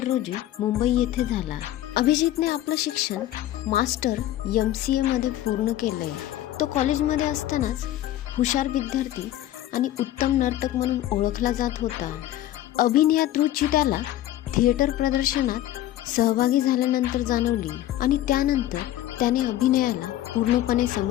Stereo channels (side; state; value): right; quieter; 13.7 dB